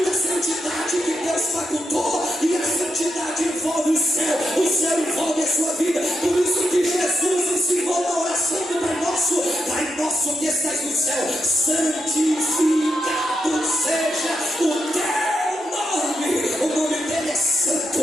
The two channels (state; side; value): normal; both; correlation 0.84